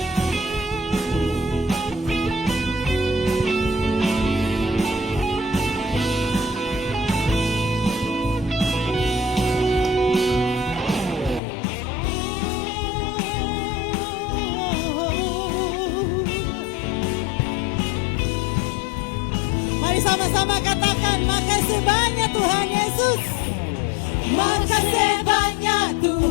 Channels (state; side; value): drops out; right; at 11.4 s